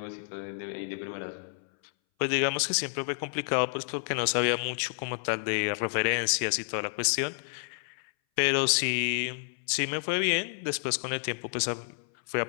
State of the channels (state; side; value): silent; right; 58 dB below the other